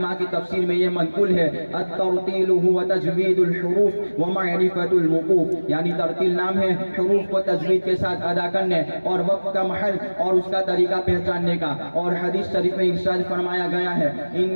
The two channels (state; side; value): inverted; both; correlation -1.00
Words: کی تفسیر میں یہ منقول ہے الترتیل هو تجوید الحروف ومعرفت الوقوف، یعنی ترتیل نام ہے حروف کو تجوید کے ساتھ ادا کرنے اور وقت کا محل اور اس کا طریقہ پہچاننے کا. اور حدیث شریف میں ارشاد فرمایا گیا ہے